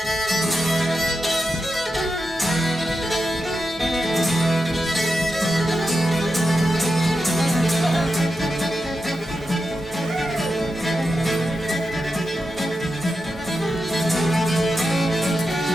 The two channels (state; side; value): normal; both; correlation 0.89